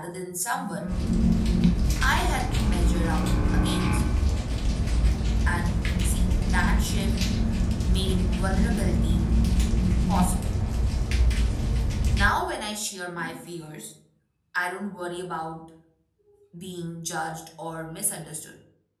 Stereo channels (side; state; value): both; identical; correlation 1.00